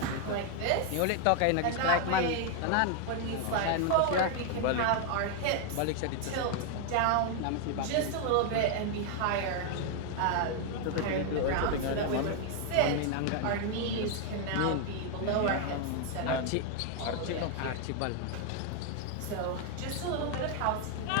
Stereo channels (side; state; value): both; different; correlation 0.00